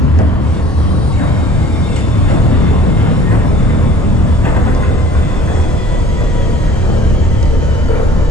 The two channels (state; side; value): normal; both; correlation 0.49